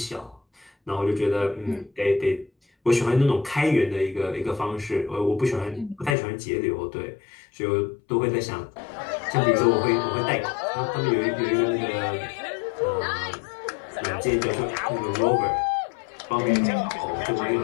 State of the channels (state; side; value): drops out; right; at 6.2 s